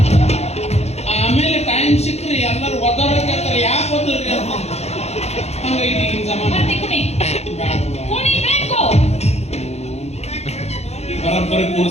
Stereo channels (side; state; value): right; late; 0.31 ms